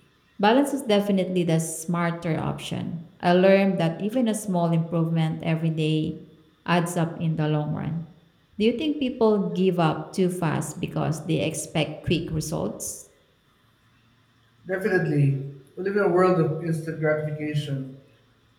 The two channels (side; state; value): both; identical; correlation 1.00